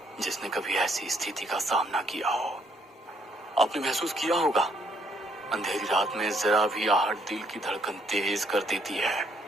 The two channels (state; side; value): normal; both; correlation 0.69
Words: जिसने कभी ऐसी स्थिति का सामना किया हो। आपने महसूस किया होगा, अंधेरी रात में जरा भी आहट दिल की धड़कन तेज कर देती है,